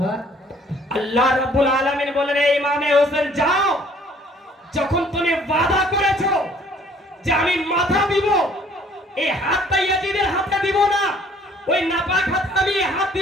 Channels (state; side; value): normal; both; correlation 0.58